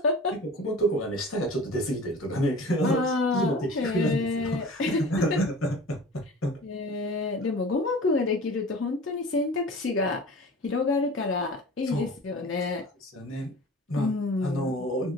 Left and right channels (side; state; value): both; normal; correlation 0.40